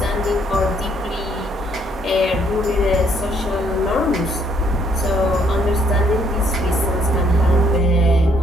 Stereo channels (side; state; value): both; normal; correlation 0.68